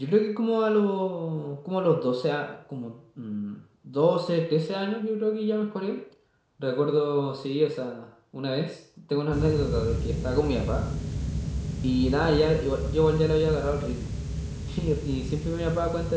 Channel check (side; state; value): both; identical; correlation 1.00